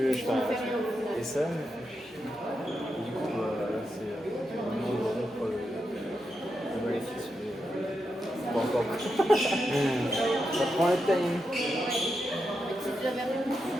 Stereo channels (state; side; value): normal; both; correlation 0.86